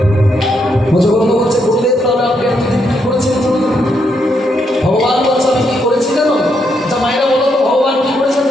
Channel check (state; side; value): normal; both; correlation 0.78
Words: মুজবন্ধ বলছে বললেন তাহলে আপনি এতদিন কি করেছেন ভগবান বলছে আমি কি করেছি জানো যা মায়েরা বলো তো ভগবান কি করেছেন